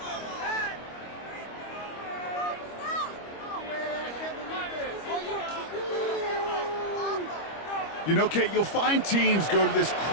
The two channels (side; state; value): right; late; 25 ms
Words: You know, Kate, you'll find teams go to this